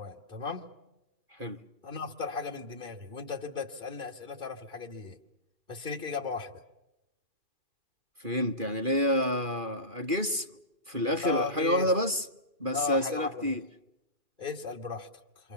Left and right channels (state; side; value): late; left; 2.4 ms